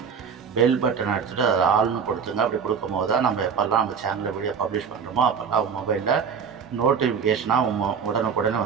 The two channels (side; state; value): left; quieter; 6.5 dB